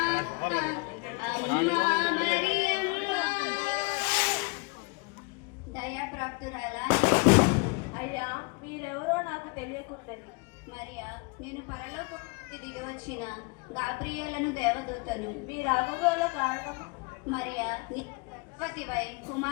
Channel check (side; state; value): right; quieter; 29.9 dB